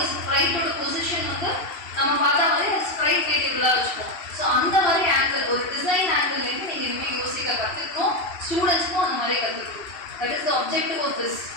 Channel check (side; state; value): right; late; 2.7 ms